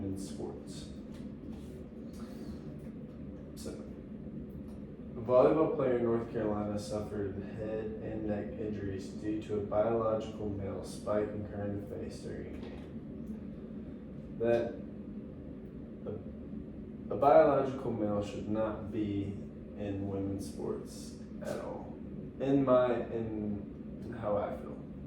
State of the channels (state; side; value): identical; both; correlation 1.00